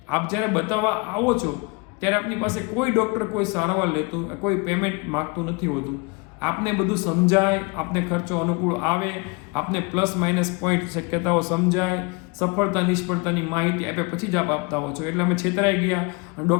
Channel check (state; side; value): quieter; right; 29.3 dB